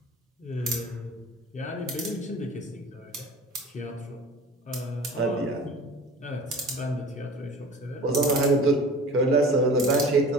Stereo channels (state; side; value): normal; both; correlation 0.40